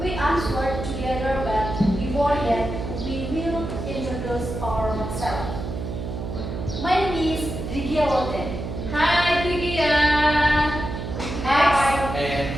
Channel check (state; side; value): noise; right; hum, 6 dB below the sound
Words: answered together, but before that, we will introduce ourselves. My name is Rigia Lotte. Hi, Tigia. Next. And